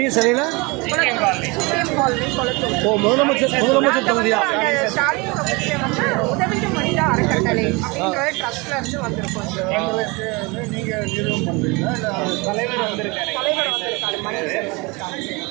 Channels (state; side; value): quieter; left; 26.7 dB